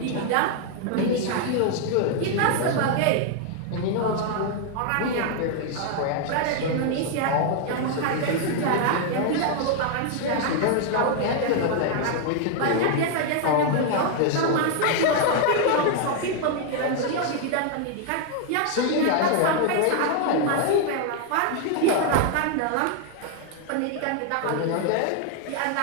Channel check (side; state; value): both; different; correlation 0.00